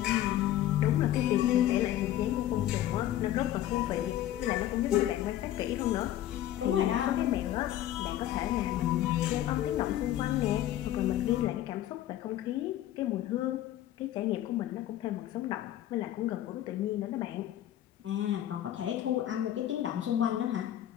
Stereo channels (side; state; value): right; quieter; 12.8 dB